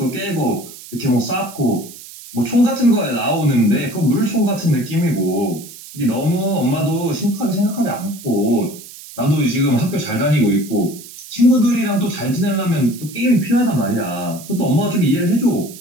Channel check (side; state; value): right; noise; hiss, 16 dB below the sound